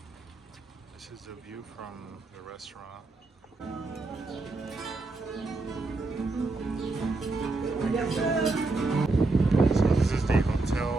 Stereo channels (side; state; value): left; quieter; 3.3 dB